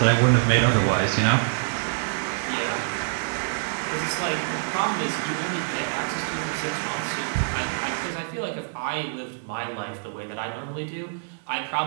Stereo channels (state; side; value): silent; left; digital silence